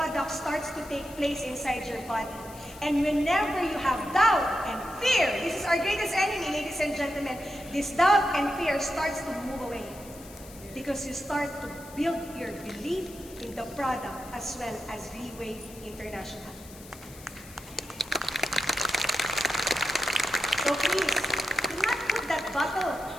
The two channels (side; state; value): left; noise; hiss, 19 dB below the sound